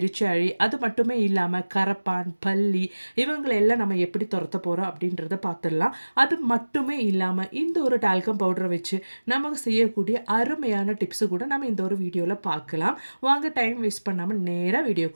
அது மட்டுமே இல்லாமல் கரப்பான், பல்லி இவங்களெல்லாம் நம்ம எப்படி துரத்த போகிறோம் அப்படின்றத பார்த்துடலாம். அது மட்டுமே இல்லாமல் இந்த ஒரு டால்கம் பவுடரை வச்சு நமக்கு செய்யக்கூடிய அருமையான டிப்ஸு கூட நம்ம இந்த ஒரு வீடியோவில் பார்க்கலாம். வாங்க டைம் வேஸ்ட் பண்ணாமல் நேராக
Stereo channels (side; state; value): both; inverted; correlation -1.00